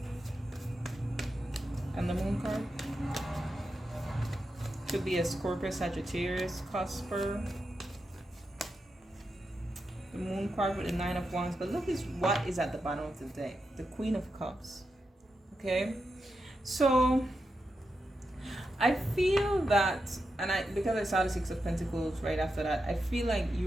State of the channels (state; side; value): normal; both; correlation 0.88